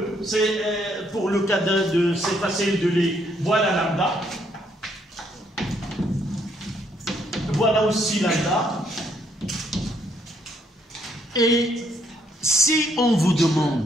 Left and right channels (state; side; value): normal; both; correlation 0.70